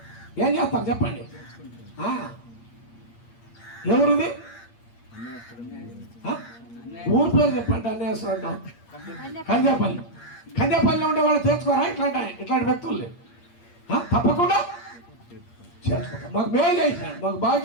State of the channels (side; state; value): right; late; 8.6 ms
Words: ఏం చేస్తారు చెప్పండి? ఎవరిది? ఊరి పేరు చెప్పండి. అన్యాసం అంటాం. కందేపల్లి ఉండే వాళ్ళు చేర్చుకోరా? ఇట్లాంటి వ్యక్తుల్ని తప్పకుండా చేర్చుకుంటాం. మాకు మేలు చేశాడు, మాకు బాగా